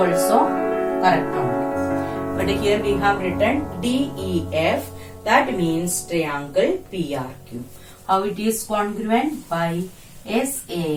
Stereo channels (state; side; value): identical; both; correlation 1.00